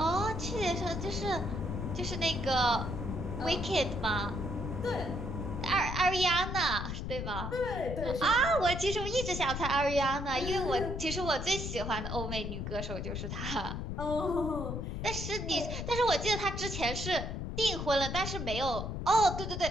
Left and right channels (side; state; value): left; noise; rumble, 4 dB below the sound